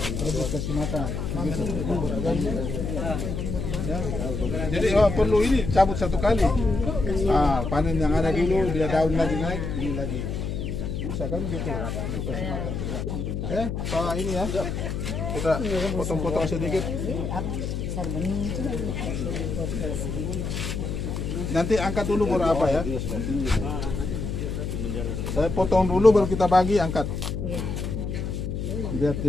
terus kasih makan. Ya. Jadi perlu ini cabut 1 kali. Panen yang ada dulu, dia daun lagi naik, ini lagi. Bisa kan gitu. Pak ini ya. Kita potong-potong sedikit. Nanti angkat dulu baru apa ya? Saya potong dulu baru kita bagi, angkat. Biar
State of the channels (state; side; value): noise; left; hum, 3 dB below the sound